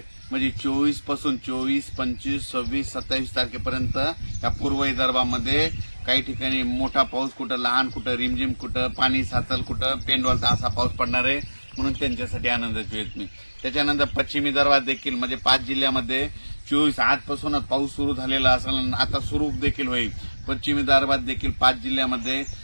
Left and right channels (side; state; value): both; inverted; correlation -1.00